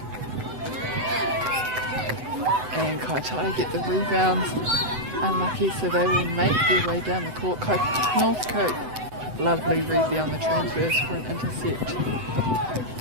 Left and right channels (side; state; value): left; late; 7.9 ms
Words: And Kaitaia get the rebounds. Unlucky, so they will make their way down the court. Northcote, lovely read there on the transverse for an intercept.